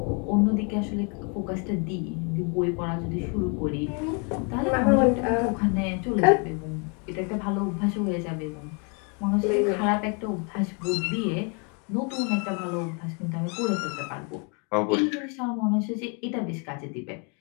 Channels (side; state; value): right; quieter; 35.6 dB